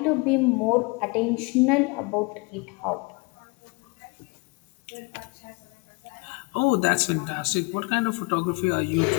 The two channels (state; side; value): quieter; right; 28.3 dB